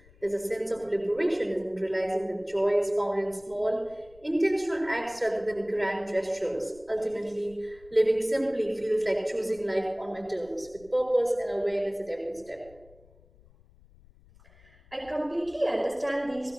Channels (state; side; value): noise; left; rumble, 26 dB below the sound